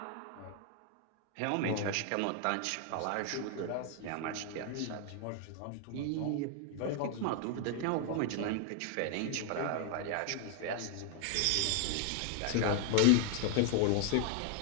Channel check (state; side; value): different; both; correlation 0.00